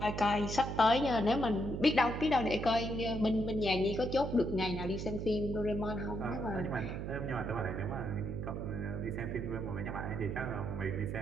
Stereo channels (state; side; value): noise; right; hum, 4 dB below the sound